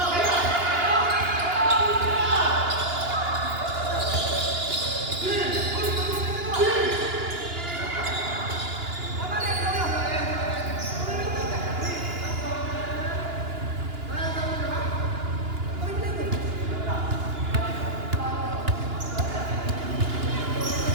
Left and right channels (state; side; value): late; left; 2.9 ms